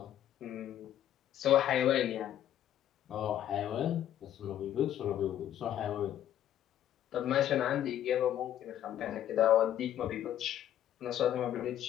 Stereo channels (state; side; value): quieter; right; 11.3 dB